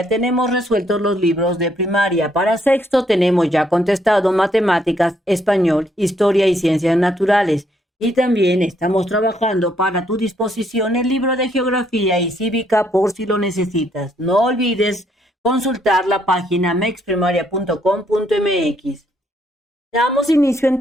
tenemos resueltos los libros de primaria. Para sexto tenemos ya contestado matemáticas, español, historia y ciencias naturales. Y también estamos trabajando para tu disposición el libro de geografía y cívica por si lo necesitas. No olvides consultar la página mexprimaria.com.mx. Damos inicio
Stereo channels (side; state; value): both; normal; correlation 0.71